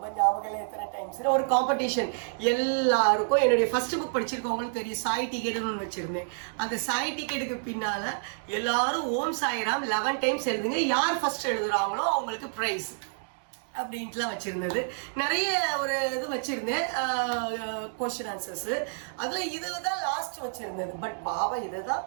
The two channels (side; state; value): left; silent; digital silence